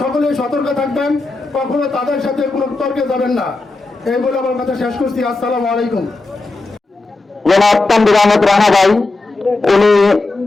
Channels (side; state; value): right; quieter; 3.3 dB